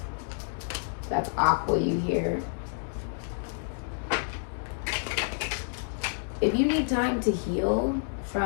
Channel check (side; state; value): right; silent; digital silence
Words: That's Aqua you here. If you need time to heal